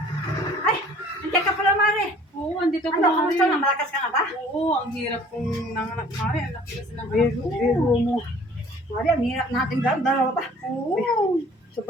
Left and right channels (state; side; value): normal; both; correlation 0.52